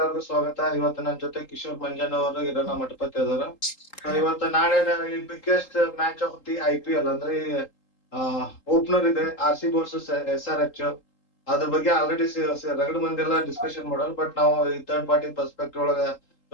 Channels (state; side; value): late; right; 3.8 ms